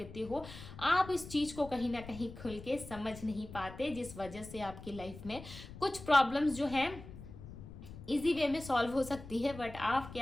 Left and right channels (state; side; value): noise; left; rumble, 14 dB below the sound